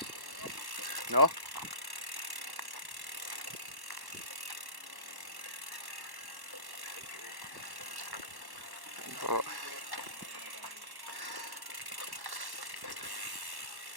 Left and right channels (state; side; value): late; left; 1.1 ms